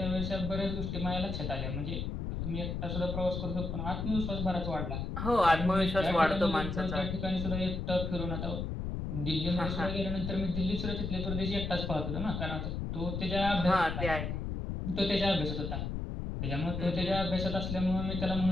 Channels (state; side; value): noise; left; rumble, 3 dB below the sound